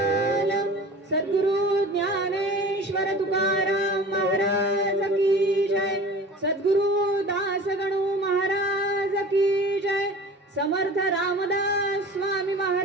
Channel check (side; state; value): both; normal; correlation 0.40